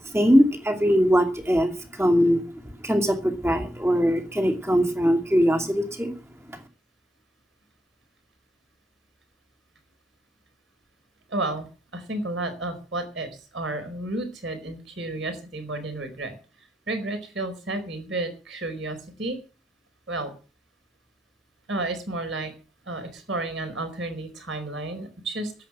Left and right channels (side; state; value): both; normal; correlation 0.82